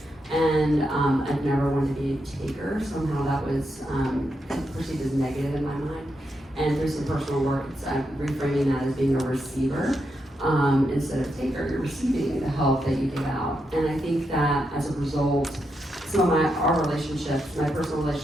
And I've never wanted to be a taker. Somehow that was perceived as negative in my mind. And through some personal work, I'm reframing that as being a receiver instead of taker. You're receiving the help that you give out. And I think that as a result, some of our relationships, my personal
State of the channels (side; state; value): both; normal; correlation 0.83